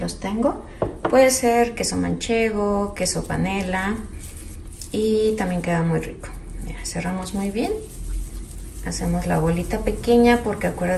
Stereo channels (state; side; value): identical; both; correlation 1.00